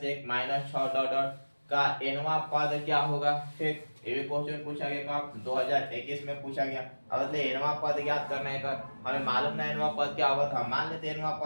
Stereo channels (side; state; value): both; inverted; correlation -1.00